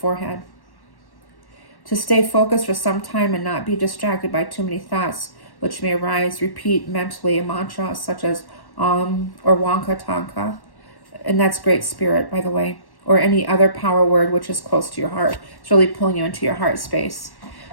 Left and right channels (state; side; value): late; right; 1.1 ms